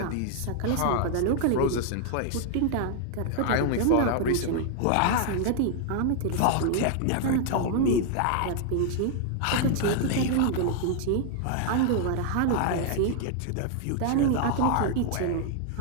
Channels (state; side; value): different; both; correlation 0.00